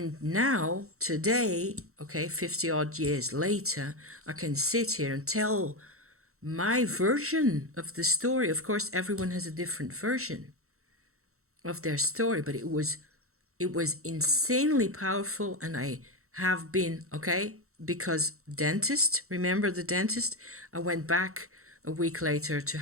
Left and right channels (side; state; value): left; late; 0.63 ms